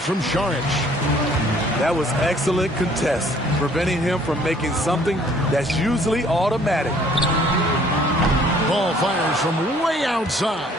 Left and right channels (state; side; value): normal; both; correlation 0.58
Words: from Saric. That was excellent contest, preventing him from making something that's usually automatic. Ball fires from way outside.